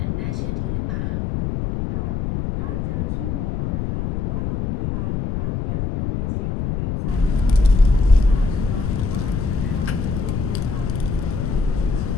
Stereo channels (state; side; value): noise; left; rumble, 2 dB below the sound